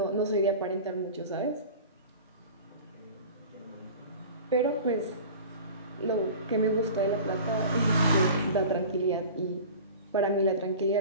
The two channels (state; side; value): inverted; both; correlation -0.38